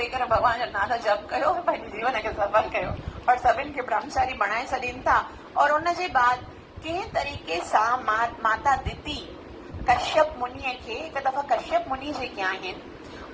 करे भॻवान जो नालो जप कयो, पंहिंजे जीवन खे सफल कयो और सभिनि खे ब्रह्मचारी बणाए छॾीनि था। और उनजे बाद कंहिं तरीक़े सां माता दिति कश्यप मुनीअ खे हिकु दफ़ा कश्यप मुनि जेके आहिनि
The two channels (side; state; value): both; identical; correlation 1.00